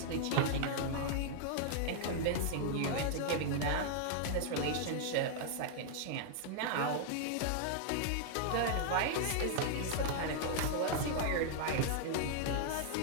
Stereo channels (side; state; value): both; different; correlation -0.01